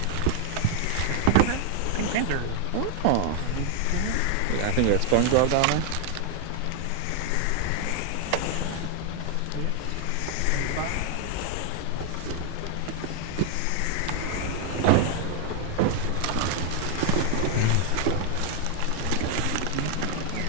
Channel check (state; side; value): different; both; correlation 0.00